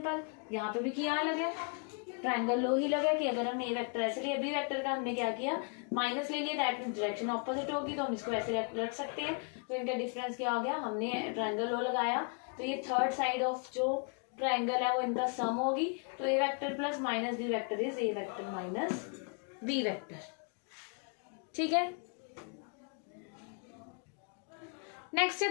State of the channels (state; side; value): quieter; right; 39.4 dB